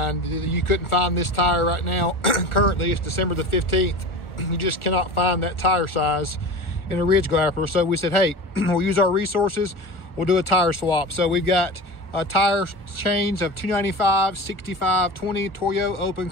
You couldn't find this tire right now. Currently, it's December the 15th. You just cannot find that tire size in a Ridge Grappler. So we said, hey, we'll use our resources, we'll do a tire swap. So we've got a tire change of 295, 65, 20 Toyo Open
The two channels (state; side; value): late; right; 1.4 ms